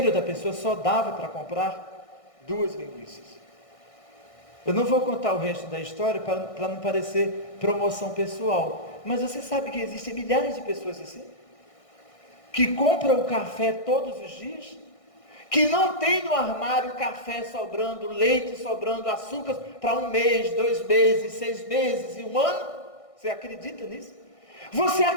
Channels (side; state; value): right; late; 1.6 ms